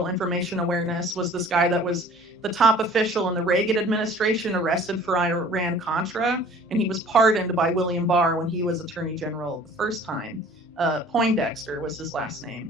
Information Awareness was this guy that was the top official in the Reagan administration, arrested for Iran-Contra, and he was pardoned by William Barr when he was Attorney General the first time. Poindexter was his last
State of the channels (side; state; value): both; normal; correlation 0.49